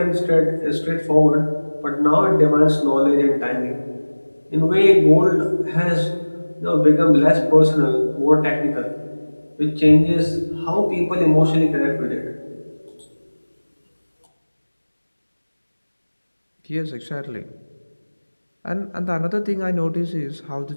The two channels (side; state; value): both; inverted; correlation -1.00